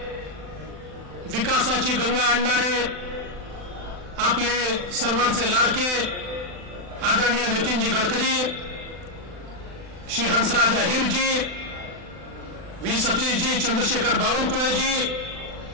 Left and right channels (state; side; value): late; left; 39 ms